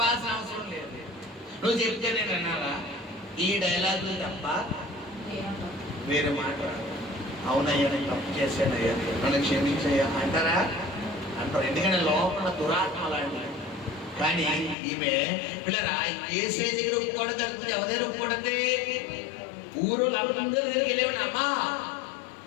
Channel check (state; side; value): drops out; right; at 14.8 s